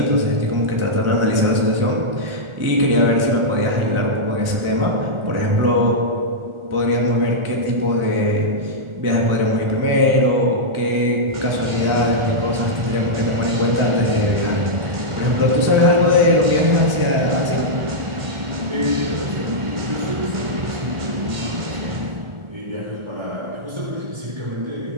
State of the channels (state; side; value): late; left; 1.4 ms